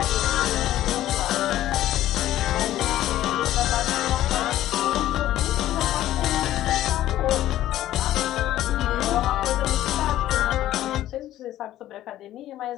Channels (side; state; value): right; quieter; 13.6 dB